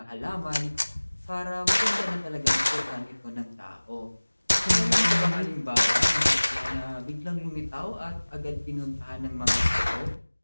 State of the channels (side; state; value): both; inverted; correlation -1.00